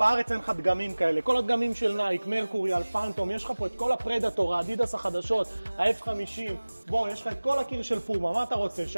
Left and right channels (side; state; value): both; inverted; correlation -1.00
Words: אין לך דגמים כאלה. כל הדגמים של נייק, מרקורי, אלפנטום, יש לך פה את כל הפרדטור, האדידס החדשות, ה-F50. בוא, יש לך את כל הקיר של פומה, מה אתה רוצה,